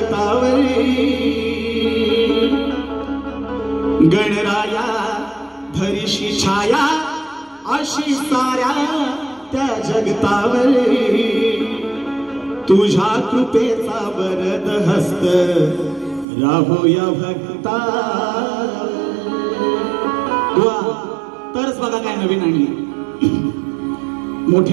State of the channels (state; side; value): drops out; left; at 16.2 s